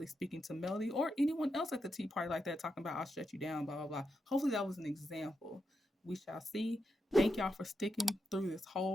speaking to Melody or anyone else at the tea party like that, talking about I'll shut you down, blah, blah, blah. Hopefully that was an example. We shall see. Thank y'all for sticking through this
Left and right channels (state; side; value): normal; both; correlation 0.85